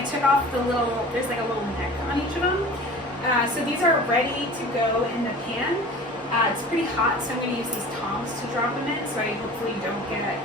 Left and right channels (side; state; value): both; normal; correlation 0.40